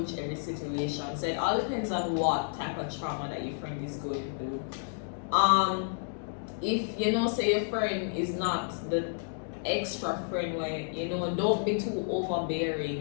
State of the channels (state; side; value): silent; right; digital silence